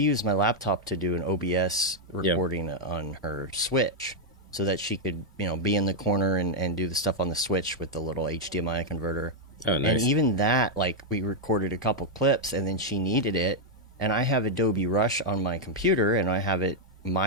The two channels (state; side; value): normal; both; correlation -0.01